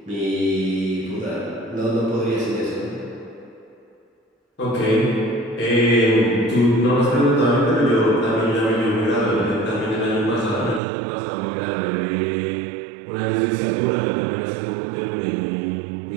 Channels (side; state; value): left; drops out; at 10.8 s